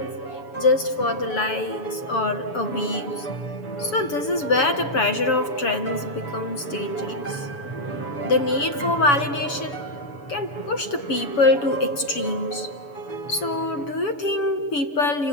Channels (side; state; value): right; late; 7.0 ms